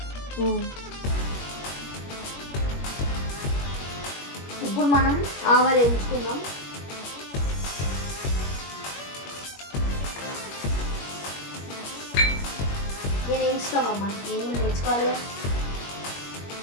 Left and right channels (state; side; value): late; right; 21 ms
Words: ఇప్పుడు మనం ఆవాలు వేయించుకుందాం. నేను వేయించుతామమ్మా, నేను నేర్చుకోవాలి.